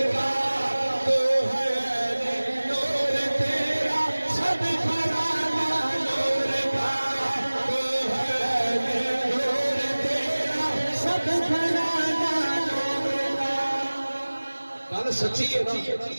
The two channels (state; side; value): inverted; both; correlation -1.00